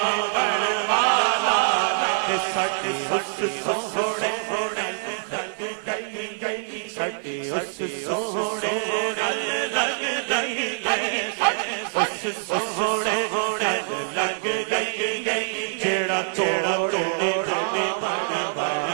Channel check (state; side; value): silent; left; digital silence